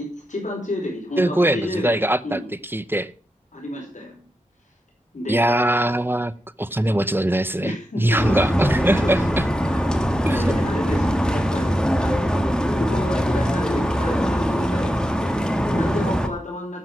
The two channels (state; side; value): normal; both; correlation 0.87